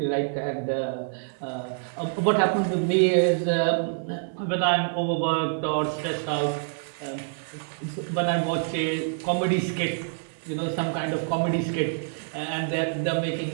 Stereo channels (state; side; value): silent; left; digital silence